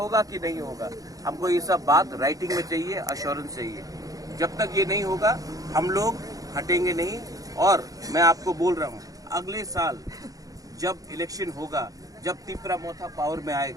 कि नहीं होगा, हमको ये सब बात राइटिंग में चाहिए, अश्योरेंस चाहिए। जब तक ये नहीं होगा हम लोग हटेंगे नहीं। और मैं आपको बोल रहा हूँ अगले साल जब इलेक्शन होगा, जब तिपरा मोथा पावर में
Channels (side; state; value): left; late; 0.17 ms